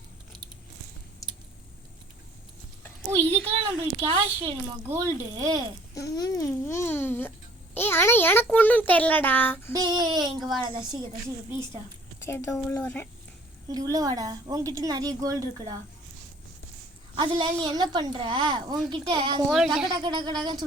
இதுக்கெல்லாம் நம்மளுக்கு கேஷ் வேணுமா? கோல்டு? ஆனால் எனக்கு ஒன்றும் தெரிலடா. இங்கே வாடா தசிக ப்ளீஸ்டா. சரி, உள்ள வரேன். இங்கே உள்ள வாடா. உங்ககிட்ட நிறைய கோல்டு இருக்குடா. அதில் நீ என்ன பண்ணுற? உங்ககிட்ட டக்கு டக்கு டக்கு டக்குன்னு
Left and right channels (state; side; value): normal; both; correlation 0.55